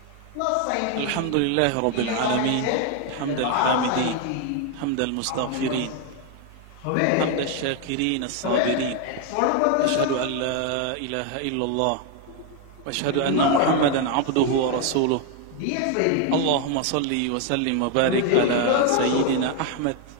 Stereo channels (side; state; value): both; different; correlation 0.01